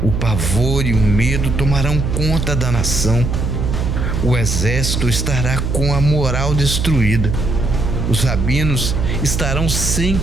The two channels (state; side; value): noise; right; hum, 1 dB below the sound